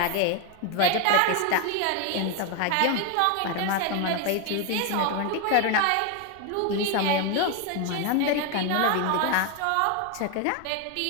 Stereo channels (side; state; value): both; different; correlation 0.01